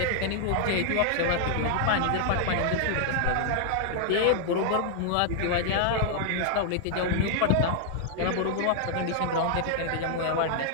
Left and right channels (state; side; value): different; both; correlation 0.00